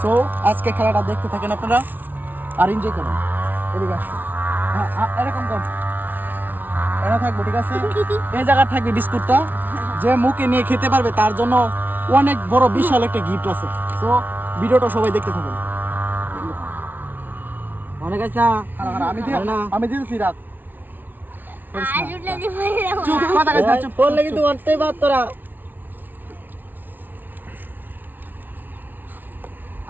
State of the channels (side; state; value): left; late; 0.087 ms